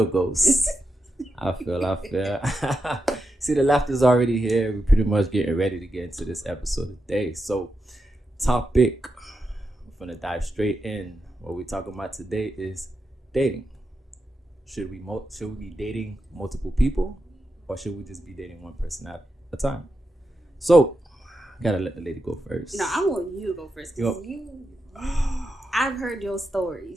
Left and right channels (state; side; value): normal; both; correlation 0.87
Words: ghost. I feel. See, the laughter's already here. We're pretty much getting ready to get into this episode today. So, topic, we're going to dive straight in. What we're talking about today is dating. Should we be dating multiple people, or should we just be dating one person at a time? So, gotta let the lady go first. No, I want you to go first. I've heard your